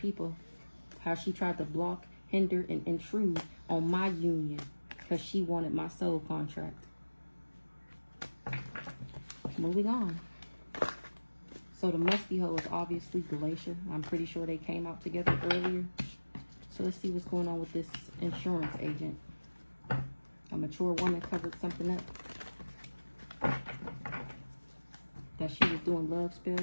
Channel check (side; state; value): both; inverted; correlation -1.00